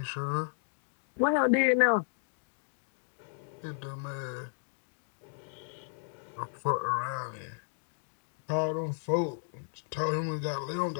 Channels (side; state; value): right; silent; digital silence